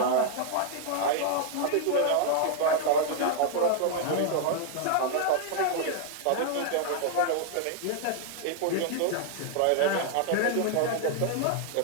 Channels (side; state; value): both; different; correlation -0.01